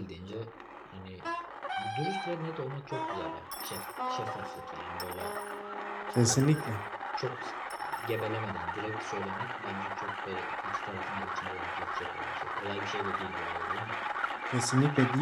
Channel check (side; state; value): both; identical; correlation 1.00